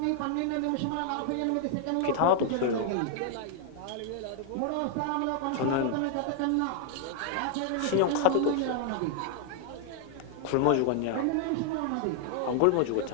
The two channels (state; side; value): different; both; correlation 0.00